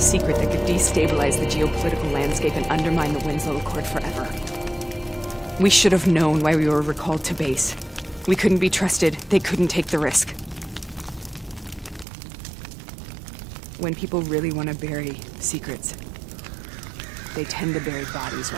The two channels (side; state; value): left; drops out; at 12.1 s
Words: that could destabilize the geopolitical landscape and undermine the Winslow Accord forever. We should have known why we were recalled to base. We couldn't be trusted. They couldn't take the risk. When people really want to bury secrets, they tend to bury bodies